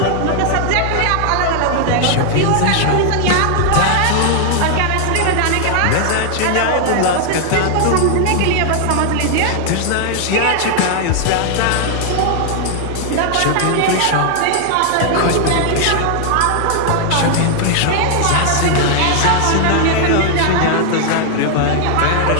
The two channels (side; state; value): both; different; correlation 0.00